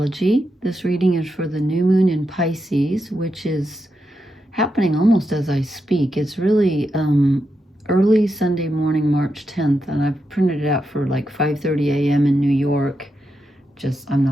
This reading is for the new moon in Pisces, which is happening almost as I speak. It's really early Sunday morning, March 10th, and I've printed it out for like 5:30 a.m. in New York. I'm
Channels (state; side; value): normal; both; correlation 0.85